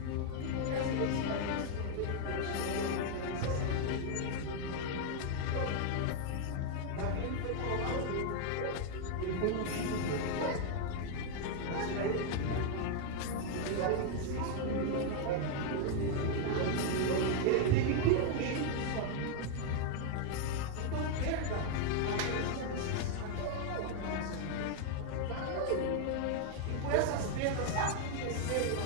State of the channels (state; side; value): different; both; correlation 0.00